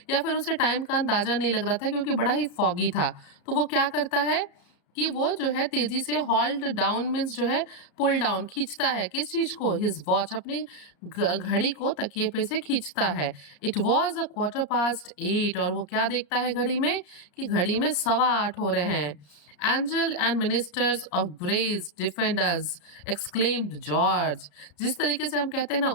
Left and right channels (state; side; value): late; right; 34 ms